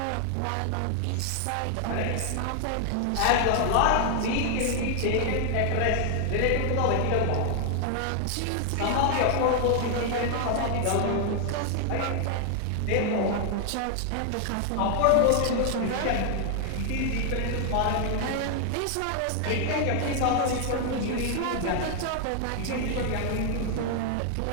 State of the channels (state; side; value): different; both; correlation 0.00